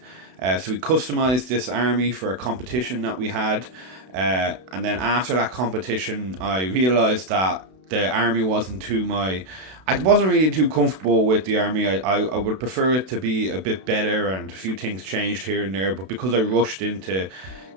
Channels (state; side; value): late; left; 32 ms